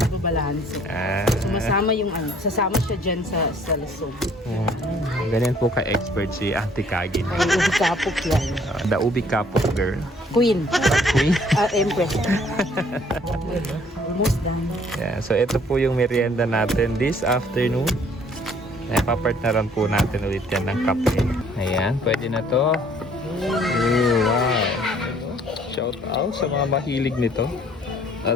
Sumasama yung sasama siya dyan sa lasog. Ganyan po ka-expert si Auntie Kagin. Ay, ubi kapok yan. The ubi kapok girl. Queen. Queen. Empress. Almost done. Yeah, so ito po yung merienda natin this afternoon. Napapartneran po natin ulit yan ng kape. Ayan, pwede na to. Wow. Shout out sa mga mahilig nito.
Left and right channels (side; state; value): both; normal; correlation 0.59